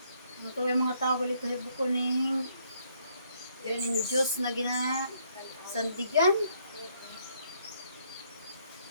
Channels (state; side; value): inverted; both; correlation -0.70